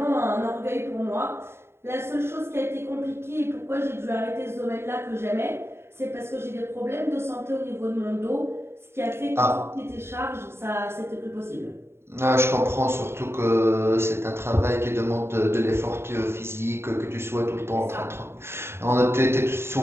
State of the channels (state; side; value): late; left; 0.12 ms